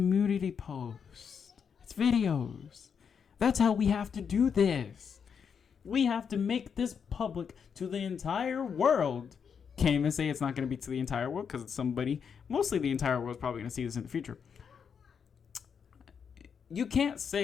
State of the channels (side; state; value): right; quieter; 6.8 dB